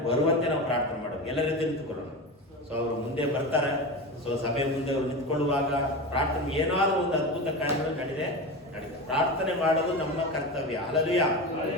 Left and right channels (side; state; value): both; normal; correlation 0.24